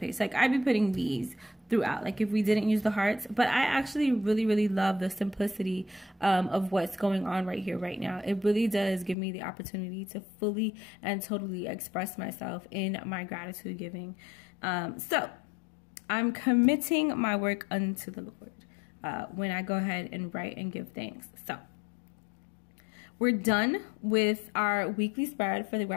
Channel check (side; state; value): right; drops out; at 9.2 s